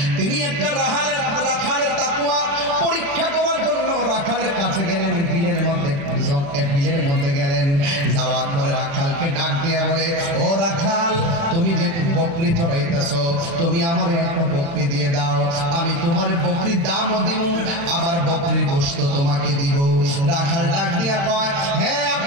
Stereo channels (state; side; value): late; left; 36 ms